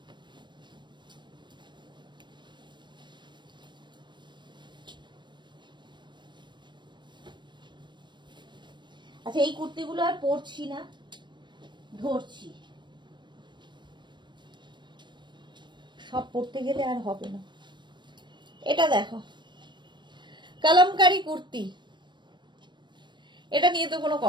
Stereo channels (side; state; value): left; late; 0.22 ms